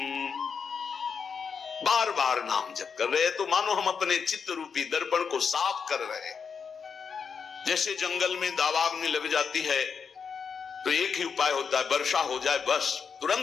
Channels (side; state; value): right; quieter; 6.1 dB